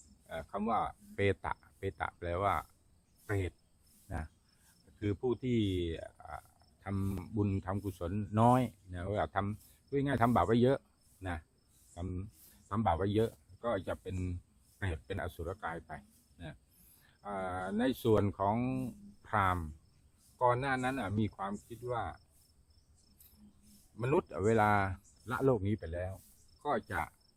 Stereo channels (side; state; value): both; identical; correlation 1.00